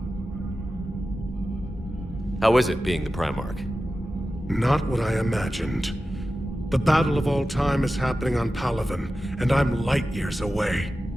How is it being the Primarch? Not what I imagined. The battle of all time is happening on Palaven, and I'm light years away,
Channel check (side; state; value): both; normal; correlation 0.93